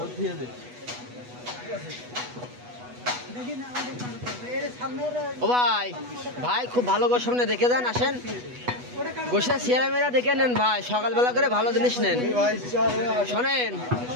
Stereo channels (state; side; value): late; left; 8.2 ms